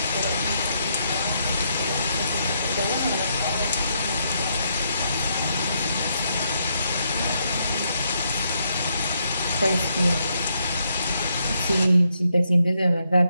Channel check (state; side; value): inverted; both; correlation -0.77